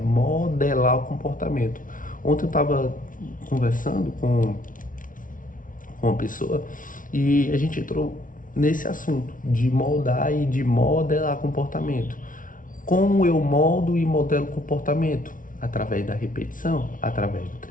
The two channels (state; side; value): late; right; 0.38 ms